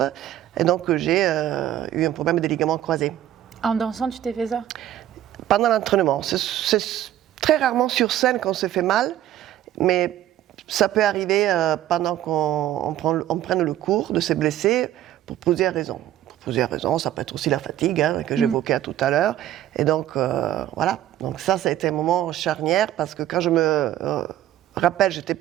et donc j'ai eu un problème des ligaments croisés. En dansant, tu t'es fait ça? Pendant l'entraînement. C'est très rarement sur scène qu'on se fait mal, mais ça peut arriver pendant qu'on prenne le cours de se blesser pour plusieurs raisons. Plusieurs raisons, ça peut être aussi la fatigue que j'évoquais tout à l'heure. Et donc, voilà. Donc ça a été un moment charnière parce que quand je me rappelle, j'étais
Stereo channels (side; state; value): left; quieter; 12.5 dB